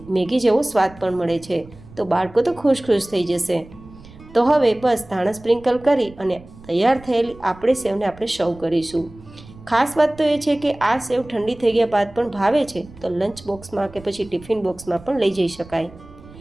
મેગી જેવો સ્વાદ પણ મળે છે, તો બાળકો તો ખુશ થઈ જશે. તો હવે બસ ધાણા સ્પ્રિંકલ કરી અને તૈયાર થયેલી આપણે સેવને આપણે સર્વ કરીશું. ખાસ વાત તો એ છે કે આ સેવ ઠંડી થઈ ગયા બાદ પણ ભાવે છે તો લંચ બોક્સમાં કે પછી ટિફિન બોક્સમાં પણ લઈ જઈ શકાય.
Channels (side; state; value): right; noise; rumble, 20 dB below the sound